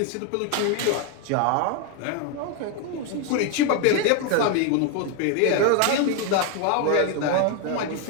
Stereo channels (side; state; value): both; different; correlation 0.01